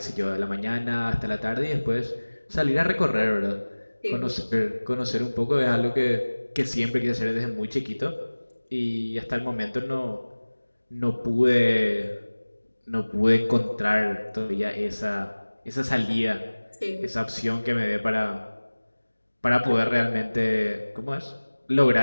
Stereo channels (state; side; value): inverted; both; correlation -1.00